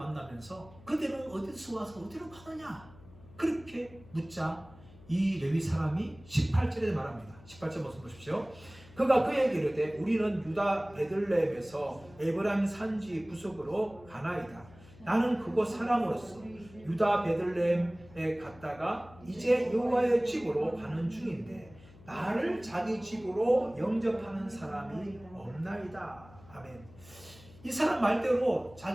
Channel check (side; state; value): left; noise; hum, 22 dB below the sound